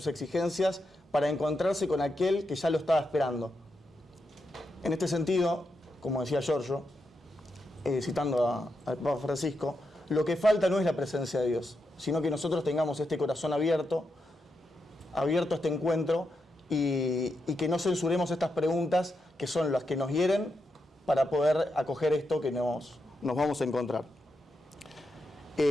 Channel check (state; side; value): normal; both; correlation 0.85